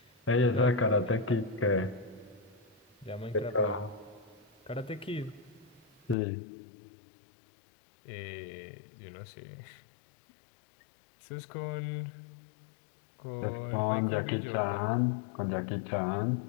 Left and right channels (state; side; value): drops out; right; at 6.2 s